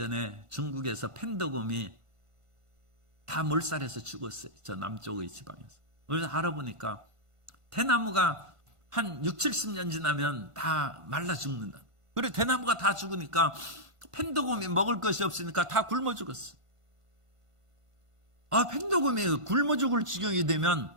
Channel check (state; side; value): late; left; 1.5 ms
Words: 중국에서 펜더곰이 다 몰살해서 죽었어요. 저 남쪽의 지방에서. 그래서 알아보니까 대나무가 한 6, 70년 지나면 다 말라 죽는다. 그리고 대나무가 다 죽으니까 펜더곰이 먹을 것이 없으니까 다 굶어 죽었어. 펜더곰이 굶어 죽을 지경이 되면